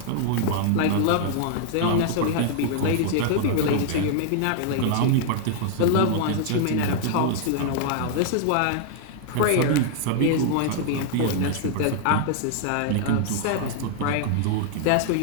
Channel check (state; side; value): different; both; correlation -0.01